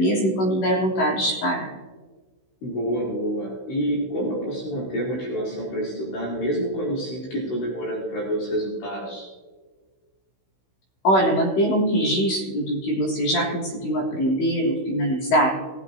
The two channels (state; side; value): late; right; 16 ms